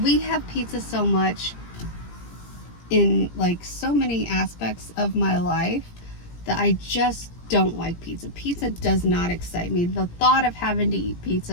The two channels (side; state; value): right; late; 17 ms